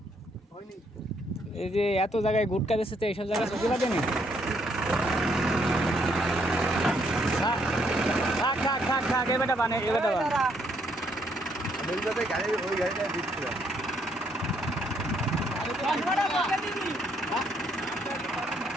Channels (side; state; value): both; normal; correlation 0.71